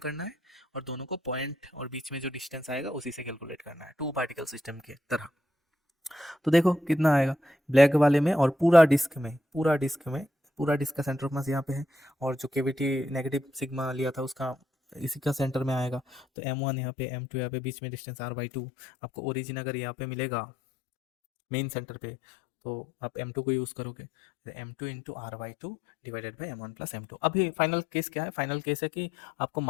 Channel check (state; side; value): drops out; right; at 16.2 s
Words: है, और दोनों को पॉइंट और बीच में जो डिस्टेंस आएगा उसी से कैलकुलेट करना है, 2 पार्टिकल सिस्टम के तरह। तो देखो कितना आएगा ब्लैक वाले में, और पूरा डिस्क में, पूरा डिस्क में, पूरा डिस्क का सेंटर ऑफ मास यहाँ पे है, और जो केविटी नेगेटिव सिग्मा लिया था उसका इसी का सेंटर में आएगा, तो m1 यहाँ पे, m2 यहाँ पे, बीच में डिस्टेंस r/2, आपको ओरिजिन अगर यहाँ पे मिलेगा मेन सेंटर पे तो आप m2 को यूज़ करोगे, m2 into r/2 divided by m1 plus m2। अभी फाइनल केस क्या है, फाइनल केस है कि आपको